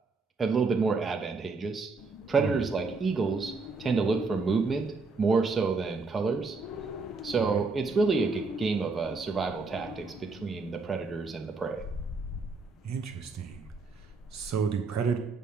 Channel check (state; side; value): quieter; left; 4.0 dB